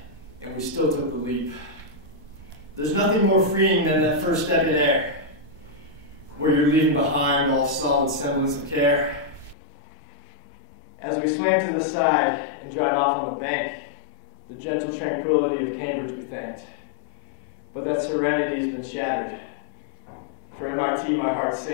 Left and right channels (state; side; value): drops out; right; at 9.6 s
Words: and we still took the leap. There's nothing more freeing than that first step in air, where you're leaving behind all solid semblance of care. As we swam to the side and dried off on the bank, the gentle tranquility of Cambridge we thanked. But that serenity's been shattered. For MIT, my heart